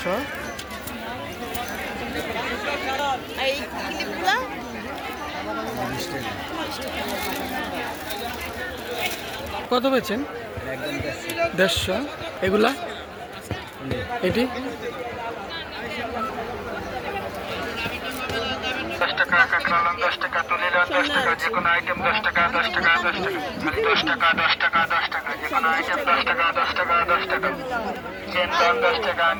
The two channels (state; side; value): identical; both; correlation 1.00